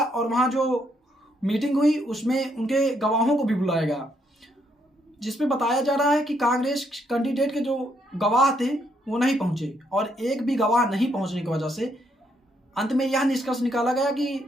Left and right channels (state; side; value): normal; both; correlation 0.74